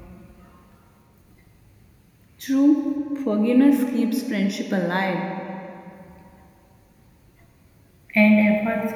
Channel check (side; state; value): both; identical; correlation 1.00